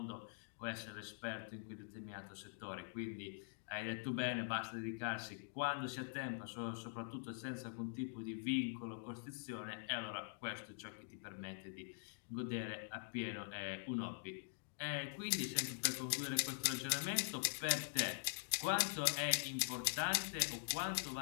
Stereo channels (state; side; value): silent; right; digital silence